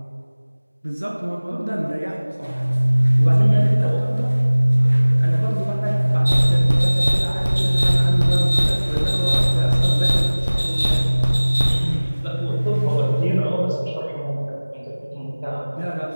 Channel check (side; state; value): both; inverted; correlation -1.00